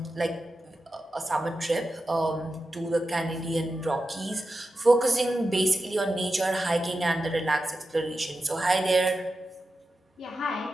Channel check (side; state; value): both; normal; correlation 0.91